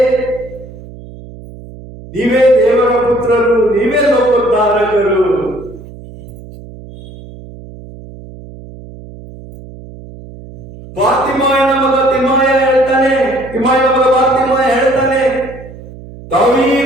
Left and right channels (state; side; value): noise; right; hum, 17 dB below the sound